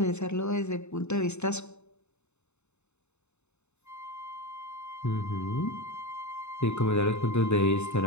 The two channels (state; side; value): late; right; 0.82 ms